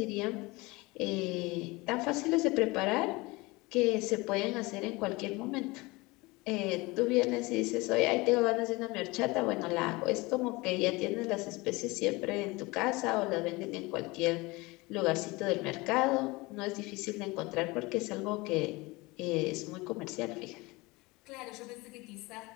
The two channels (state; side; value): quieter; right; 23.2 dB